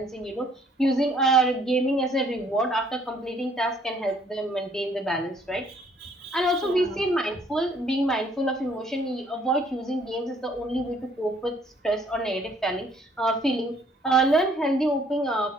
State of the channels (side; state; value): both; normal; correlation 0.62